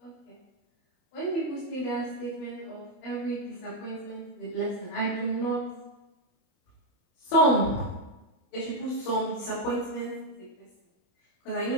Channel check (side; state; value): right; late; 27 ms